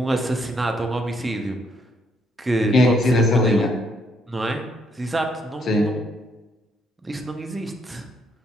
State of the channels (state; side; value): normal; both; correlation 0.71